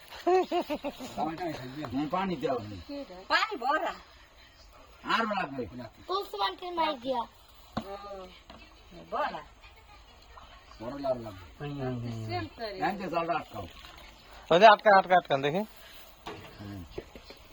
পানি দেওয়া পানি ভরা আর লাগবে তুলসী মাই দিয়া ভরা বড় লাগবে এনতে জলটা আটকাও। ওই যে আটকা আটকা আটকান দেখি।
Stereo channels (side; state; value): both; identical; correlation 1.00